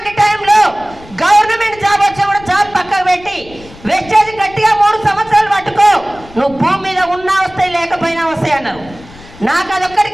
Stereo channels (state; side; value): noise; left; rumble, 21 dB below the sound